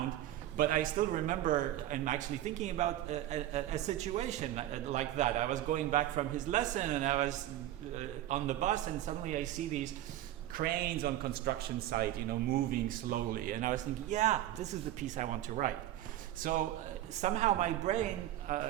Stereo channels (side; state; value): left; quieter; 13.4 dB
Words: but I still remember I'm actually thinking about a situation like that. I was going back from his lesson and I was on the bus, and suddenly I see these cranes on construction site, moving slowly, and I was thinking, yeah, this is the piece I want to write. So somehow my brain,